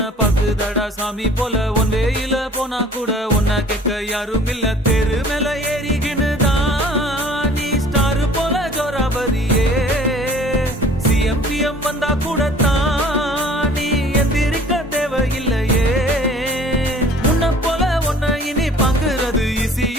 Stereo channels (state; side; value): normal; both; correlation 0.50